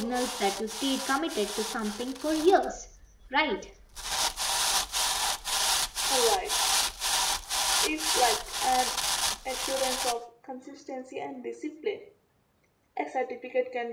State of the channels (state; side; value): identical; both; correlation 1.00